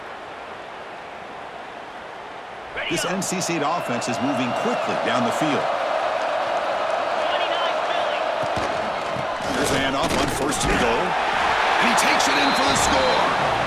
This NC State offense is moving quickly down the field. Here's a handoff on 1st and goal. And he takes it in for the score.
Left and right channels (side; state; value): both; identical; correlation 1.00